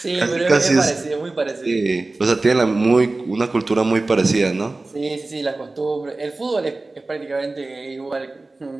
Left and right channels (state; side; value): quieter; left; 3.2 dB